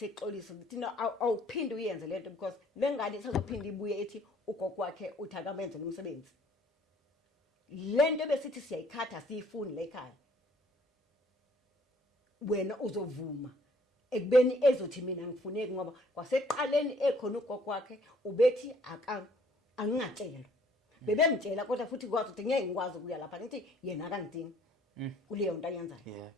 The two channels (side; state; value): both; normal; correlation 0.60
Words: ukuthi no awuphinde uyenze lento because lengane isazophinda ibuye ethi ugogo wakhe uthi akamenze umsebenzi lento besithi siyayikhatha siyifuni la ekhaya wena uzovuma ekubeni ezothi mina ngifuneki ngoba kwaseqaleni ekhona ugogo wakhe ubethi angingatshelwa bebemtshela kodwa futhi kwazi ukuthi ngeke ngikwazi ukuya lapha ngithi yena akangidingi kuleyo nto ayenzayo